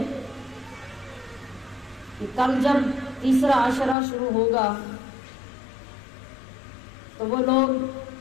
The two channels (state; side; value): drops out; right; at 4.0 s